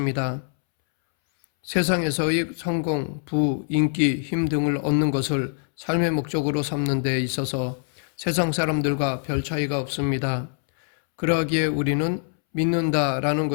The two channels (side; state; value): right; silent; 63 dB below the other